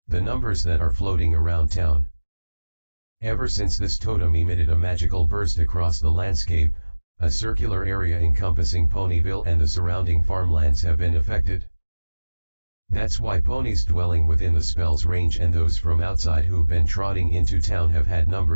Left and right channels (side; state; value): both; inverted; correlation -1.00